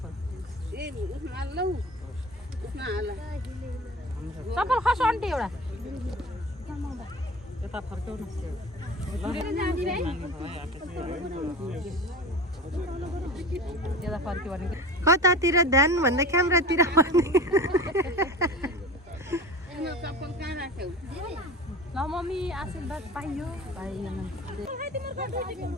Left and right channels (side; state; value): both; normal; correlation 0.35